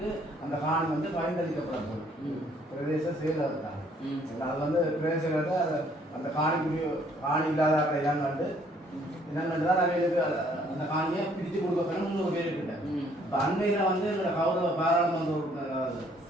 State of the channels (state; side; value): normal; both; correlation 0.63